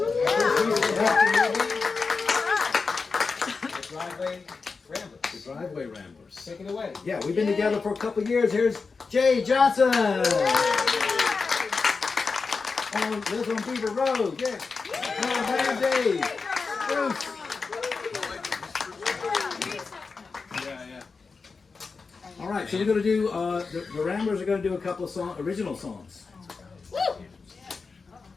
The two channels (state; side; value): quieter; right; 4.6 dB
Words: driveway ramblers. Driveway Ramblers. Take it away. Yeah, we've been together for a couple years. Here's Jay Johnson. Lives on Beaver Road. Yeah. Man, Dave. Bruce. All right, so we're going to do, the Ramblers are going to do a couple of original songs.